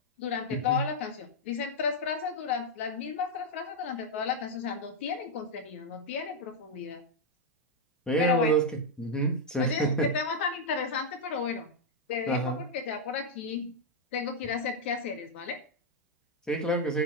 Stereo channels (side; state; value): both; normal; correlation 0.00